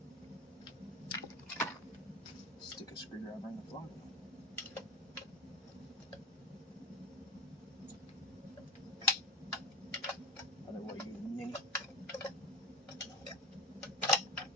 Stick a screwdriver in the flywheel. Other way, you ninny.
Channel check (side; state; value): both; normal; correlation 0.26